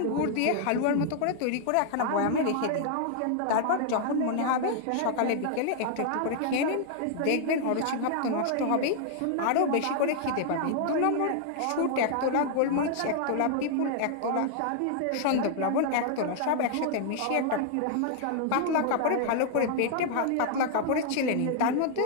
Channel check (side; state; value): both; different; correlation 0.00